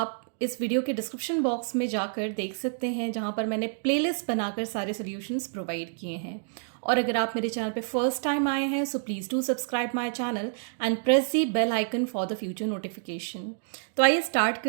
इस वीडियो के डिस्क्रिप्शन बॉक्स में जाकर देख सकते हैं, जहाँ पर मैंने प्लेलिस्ट बनाकर सारे सॉल्यूशंस प्रोवाइड किए हैं। और अगर आप मेरे चैनल पे फर्स्ट टाइम आए हैं, so please do subscribe my channel and press the bell icon for the future notification. तो आइए स्टार्ट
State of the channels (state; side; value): silent; left; digital silence